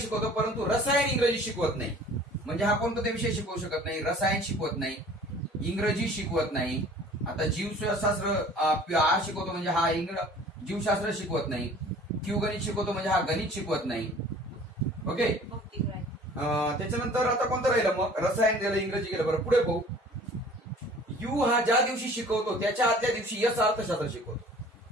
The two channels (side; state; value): both; normal; correlation 0.49